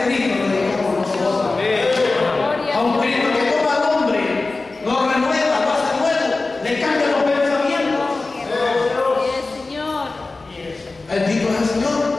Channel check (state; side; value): quieter; right; 3.5 dB